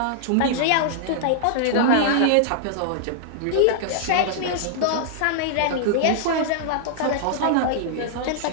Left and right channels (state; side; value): different; both; correlation -0.01